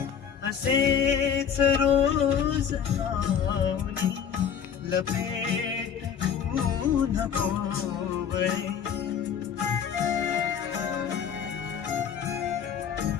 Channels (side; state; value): right; quieter; 8.0 dB